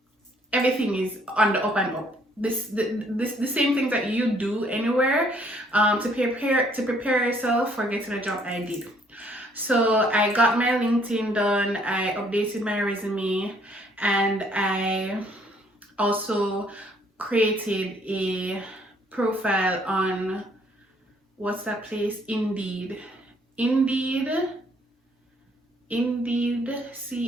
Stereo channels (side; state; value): both; normal; correlation 0.64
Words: is on the up and up. The same things that you do anywhere to prepare yourself for getting a job, I did. So I got my LinkedIn done, I updated my resume, and I also created a profile on, what's that place? Indeed,